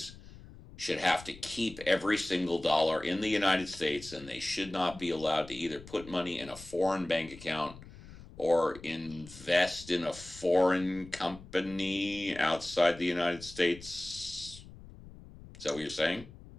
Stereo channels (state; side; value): noise; left; rumble, 18 dB below the sound